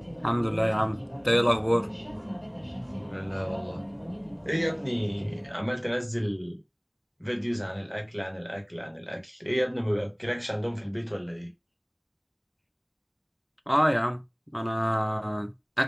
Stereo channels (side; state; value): both; identical; correlation 1.00